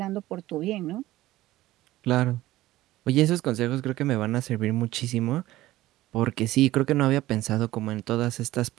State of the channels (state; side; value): quieter; left; 16.4 dB